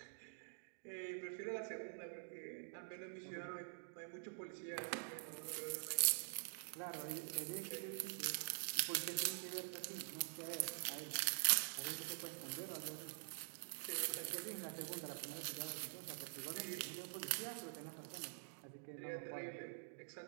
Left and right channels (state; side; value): silent; left; digital silence